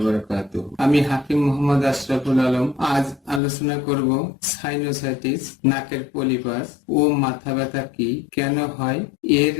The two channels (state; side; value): drops out; right; at 3.4 s